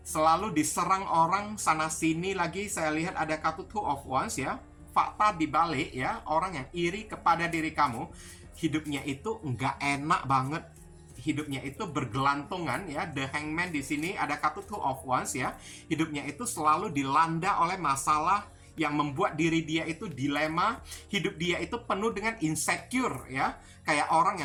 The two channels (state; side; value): identical; both; correlation 1.00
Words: Selalu diserang orang sana sini. Lagi saya lihat ada kartu Two of Wands ya. Fakta dibalik ya, orang yang iri kepada diri kamu, hidupnya itu nggak enak banget. Hidupnya itu bergelantungan ya. The Hangman di sini ada kartu Two of Wands ya. Hidupnya itu selalu dilanda oleh masalah yang membuat diri dia itu dilema. Hidup dia itu penuh dengan insecure ya. Kayak orang